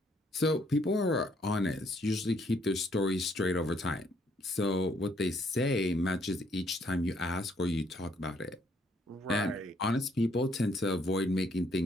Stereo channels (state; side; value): normal; both; correlation 0.68